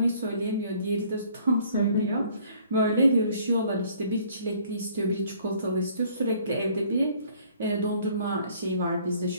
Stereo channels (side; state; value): both; inverted; correlation -0.59